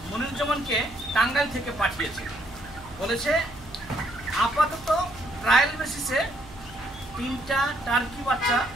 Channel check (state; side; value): noise; right; hum, 19 dB below the sound